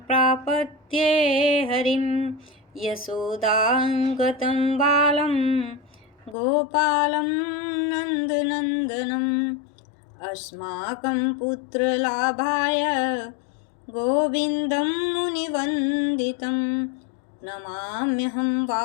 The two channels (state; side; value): drops out; right; at 6.4 s